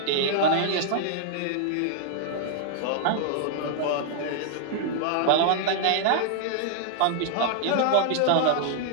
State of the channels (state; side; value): different; both; correlation -0.01